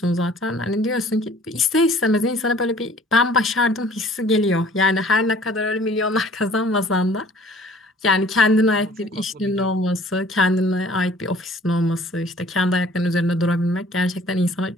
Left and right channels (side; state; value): both; normal; correlation 0.53